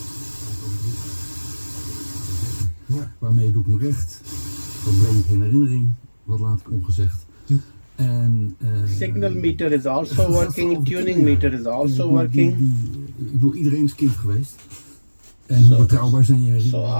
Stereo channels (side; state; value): both; inverted; correlation -1.00